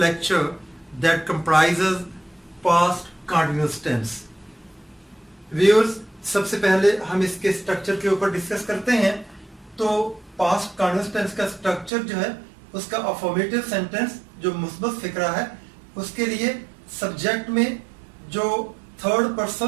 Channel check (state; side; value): drops out; left; at 11.9 s